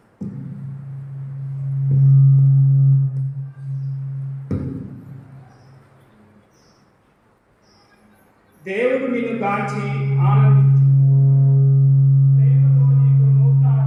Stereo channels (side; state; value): both; identical; correlation 1.00